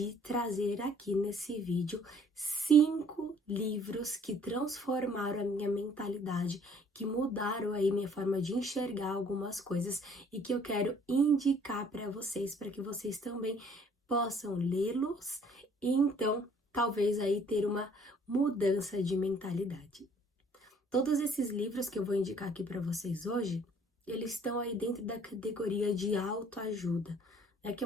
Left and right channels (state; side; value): normal; both; correlation 0.58